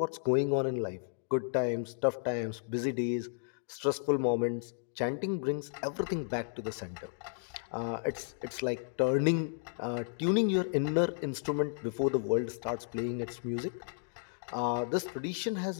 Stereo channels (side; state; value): right; silent; digital silence